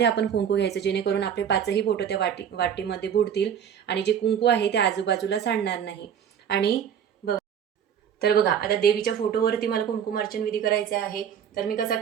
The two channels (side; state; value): left; quieter; 8.4 dB